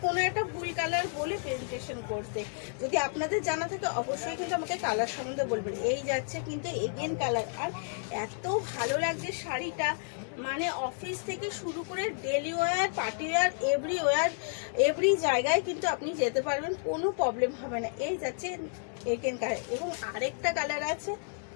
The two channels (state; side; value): silent; right; 57 dB below the other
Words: কোনো একটা ভুল কালার বলে প্রেজেন্টেশন করতে। যদি আপনাদের জানা থাকে অবশ্যই কিন্তু আমাকে কালার সম্বন্ধে বলবেন। এই যাচ্ছে কিন্তু এগেন কালার, আর এত ভালো লাগছে শাড়িটা, মানে অফিস থেকে শুরু করে daily wear, party wear, every জায়গায় কিন্তু আপনি যেতে পারবেন, কোনো প্রবলেম হবে না। এই যাচ্ছে এগেন কালার, এবং আরেকটা কালার আছে,